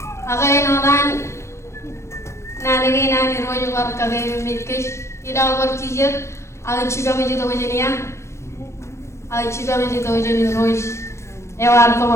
agai no dan nani nani rojo war kagai mitkesh ida war chije aga chiba me to wajiniya aga chiba me to wajini roj ewar ko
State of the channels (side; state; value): right; late; 0.13 ms